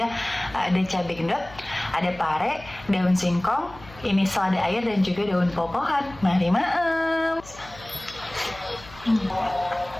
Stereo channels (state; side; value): noise; left; hum, 20 dB below the sound